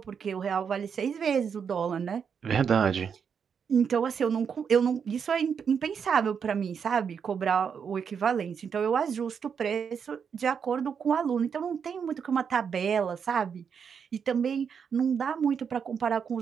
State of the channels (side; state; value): left; quieter; 6.8 dB